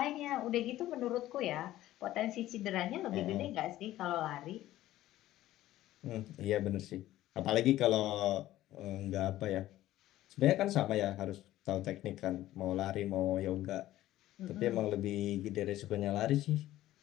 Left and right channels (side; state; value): right; quieter; 14.7 dB